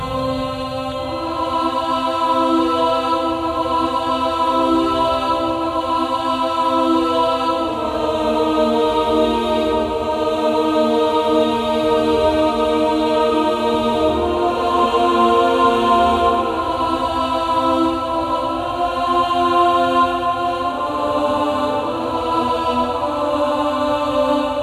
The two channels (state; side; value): identical; both; correlation 1.00